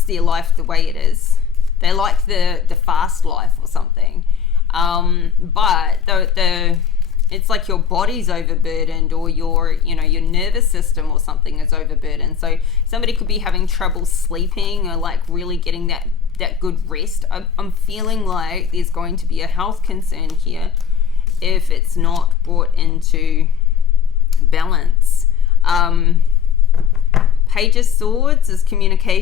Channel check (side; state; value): right; quieter; 7.4 dB